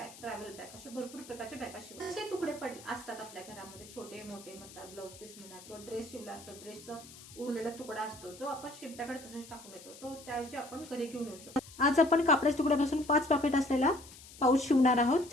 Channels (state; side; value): noise; left; hiss, 18 dB below the sound